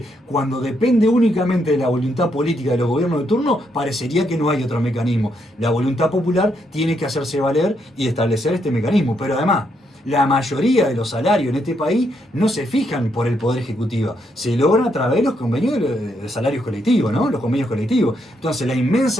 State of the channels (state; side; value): normal; both; correlation 0.77